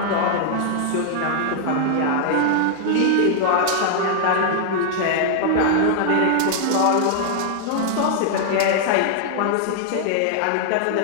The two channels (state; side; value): different; both; correlation -0.01